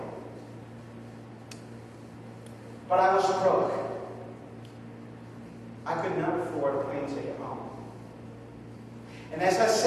But I was broke. I could not afford a plane ticket home. And as I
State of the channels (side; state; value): both; identical; correlation 1.00